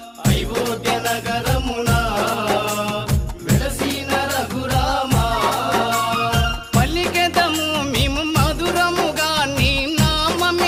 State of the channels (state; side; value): identical; both; correlation 1.00